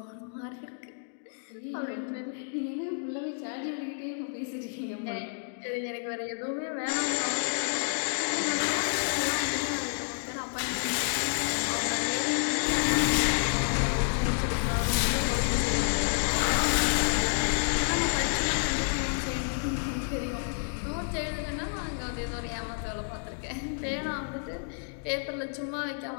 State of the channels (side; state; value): right; silent; digital silence